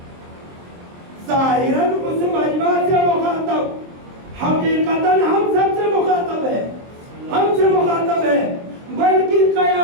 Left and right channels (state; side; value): late; left; 23 ms